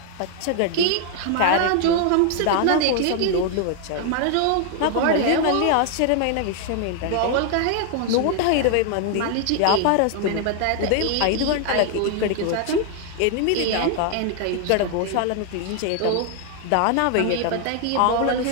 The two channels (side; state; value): both; different; correlation 0.00